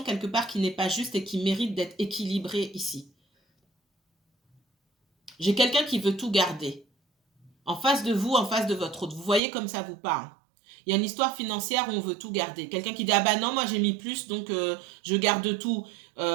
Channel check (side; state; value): left; drops out; at 9.4 s